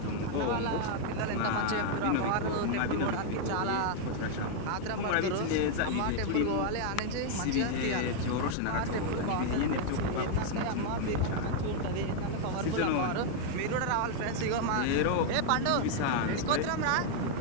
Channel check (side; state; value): both; different; correlation 0.00